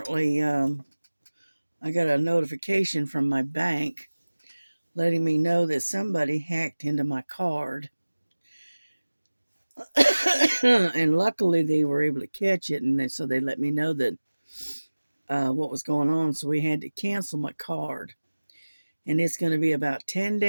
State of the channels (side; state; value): both; inverted; correlation -1.00